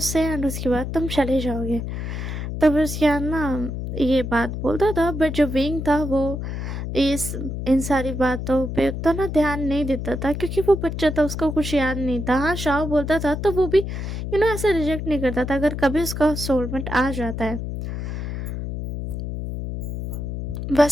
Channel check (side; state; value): left; noise; hum, 5 dB below the sound